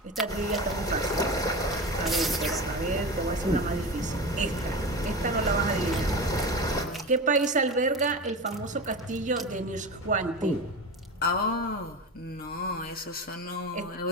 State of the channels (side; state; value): both; normal; correlation 0.26